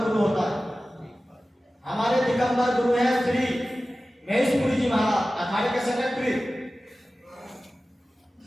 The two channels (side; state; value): both; normal; correlation 0.96